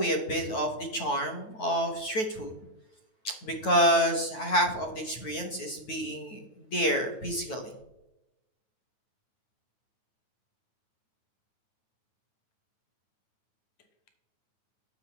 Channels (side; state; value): right; late; 9.2 ms